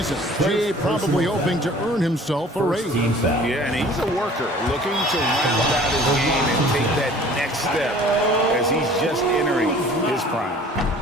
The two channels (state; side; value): normal; both; correlation 0.49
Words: GA probably hoping to earn himself a raise. Yeah, and he's a worker looking to round out his game and take that next step as he's just entering his prime.